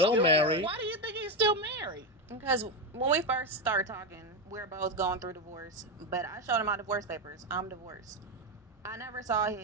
married? Why do you think he's still married? Because when we first started talking, we were both going through divorce. But I showed him my divorce papers. I'm divorced. I never saw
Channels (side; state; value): both; normal; correlation 0.11